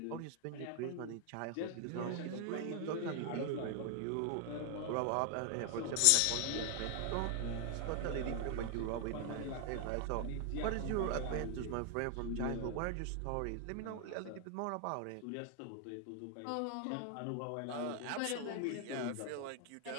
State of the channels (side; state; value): both; different; correlation 0.00